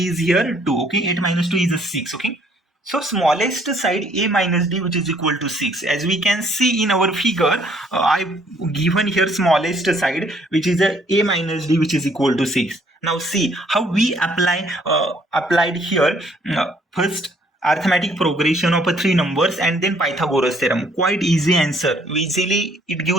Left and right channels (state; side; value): normal; both; correlation 0.64